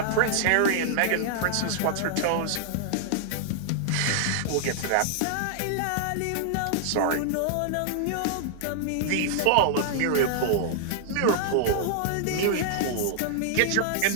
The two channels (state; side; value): different; both; correlation -0.01